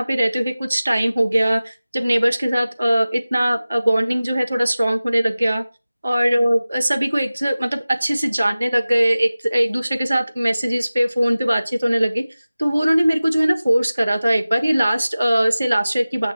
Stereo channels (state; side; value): inverted; both; correlation -0.97